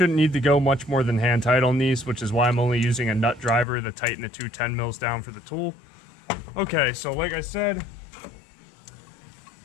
need to go much more than hand tight on these, which is why I'm only using a nut driver to tighten the two 10 mils down for the tool. Okay, so like I said,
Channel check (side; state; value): right; drops out; at 3.7 s